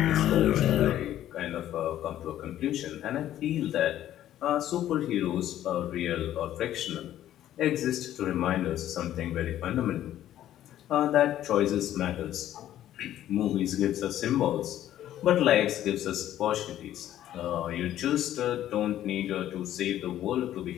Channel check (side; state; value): right; quieter; 12.3 dB